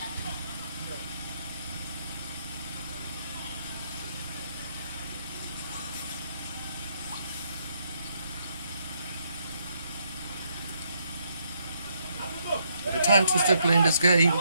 At the time to still playing this game,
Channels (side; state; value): both; inverted; correlation -0.74